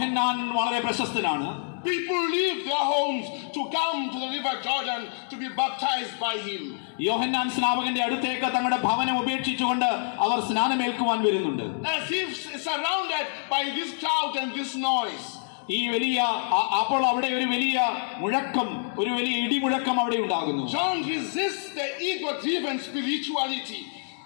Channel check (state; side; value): silent; right; digital silence